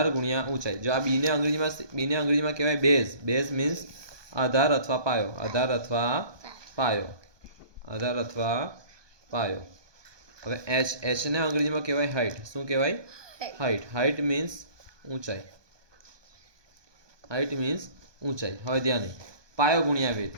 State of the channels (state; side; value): late; left; 1.2 ms